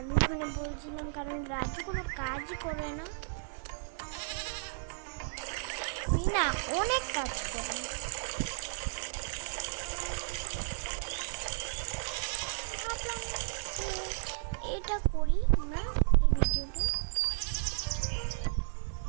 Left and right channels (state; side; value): silent; left; digital silence